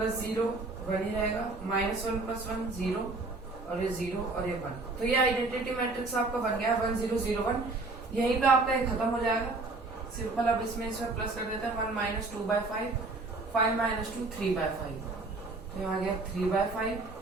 0 1 ही रहेगा, -1 + 1 0, और ये 0 और ये 1। तो ये आइडेंटिटी मैट्रिक्स आपका बन गया 1 0 0 1। यहीं पे आपका ये खत्म हो जाएगा सिंपल। अब इसमें प्लस कर देते हैं, 1 - 2/5, 5 - 2 3/5, तो यहाँ आ गया 3/5,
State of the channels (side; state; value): left; quieter; 3.5 dB